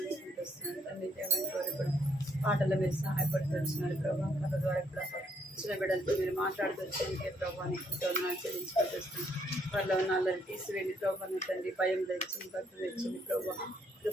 వస్తున్నాను తండ్రి. దేవాన్ని కోరి కూడా పాటల్లో మీరు సహాయపడుతూ వచ్చినారు ప్రభా. కథ ద్వారా కూడా చిన్న బిడ్డలతో మీరు మాట్లాడుతూ వచ్చేందుకే ప్రభాని ఎంతో వందనాలు చెల్లించుకుంటూ వస్తున్నాను. వారిలో ఉన్న అల్లరి తీసివేయండి ప్రభాని తండ్రి. భయం తెచ్చింది, భక్తి తెచ్చింది ప్రభా.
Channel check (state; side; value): normal; both; correlation 0.69